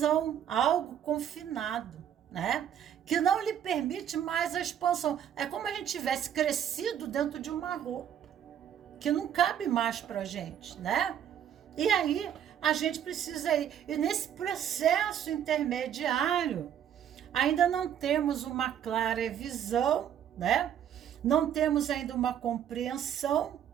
algo confinado, né? Que não lhe permite mais a expansão. É como a gente tivesse crescido dentro de uma roupa, que não cabe mais para a gente, né? E aí a gente precisa ir. E nesse processo intermediário, ainda não temos uma clara visão, né? Não temos ainda uma compreensão,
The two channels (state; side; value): quieter; left; 9.6 dB